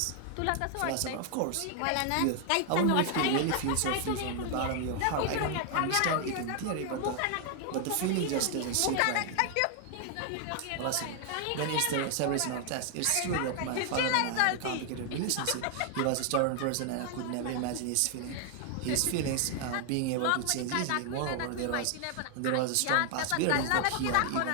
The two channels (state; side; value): different; both; correlation 0.00